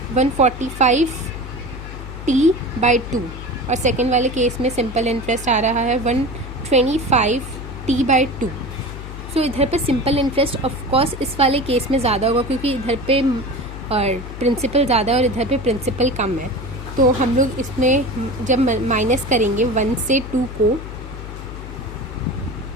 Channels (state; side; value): noise; left; hum, 11 dB below the sound